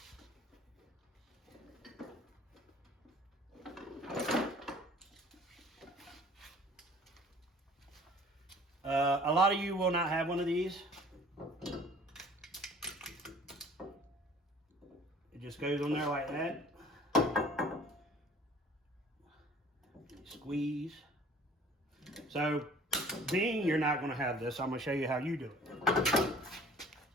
A lot of you will not have one of these. It just goes on there like that. Squeeze. So, being you're not going to have this, I'm going to show you how you do it.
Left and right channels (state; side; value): normal; both; correlation 0.50